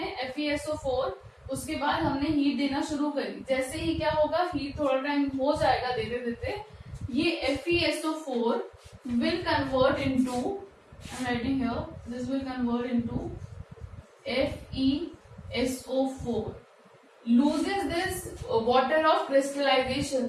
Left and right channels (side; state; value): both; identical; correlation 1.00